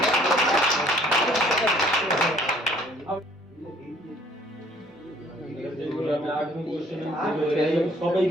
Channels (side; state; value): both; normal; correlation 0.59